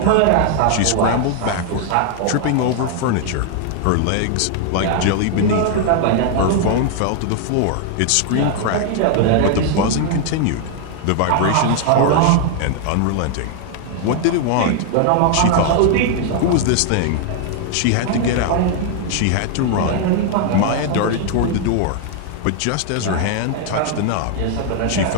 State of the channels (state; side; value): different; both; correlation 0.00